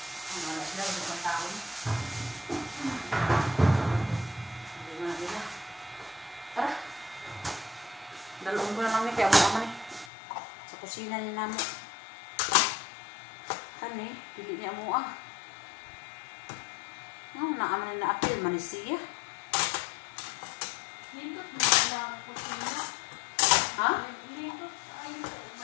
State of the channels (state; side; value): drops out; right; at 10.1 s